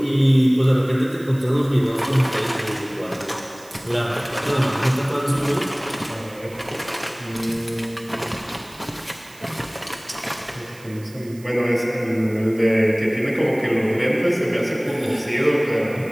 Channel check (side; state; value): right; noise; hiss, 23 dB below the sound